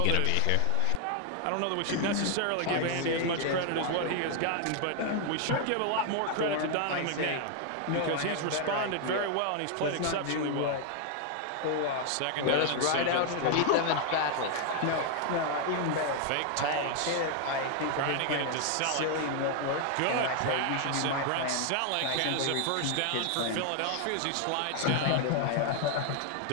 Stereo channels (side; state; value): both; different; correlation 0.00